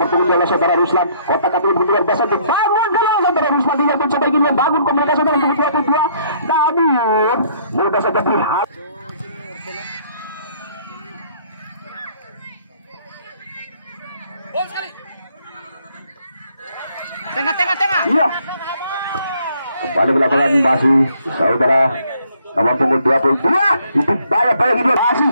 punggung adalah saudara Ruslan kotak-atik luar biasa dibangun kalau saudara Ruslan dia mencoba ingin membangun komunikasi dengan punggung 22 namun mudah saja berhati Tengah. iya kembali ke lapangan masih saudara nomor punggung 22 itu banyak ini masih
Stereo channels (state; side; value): inverted; both; correlation -0.64